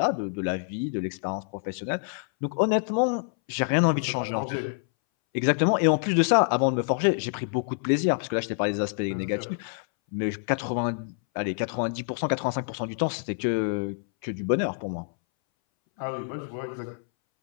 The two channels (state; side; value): silent; right; 60 dB below the other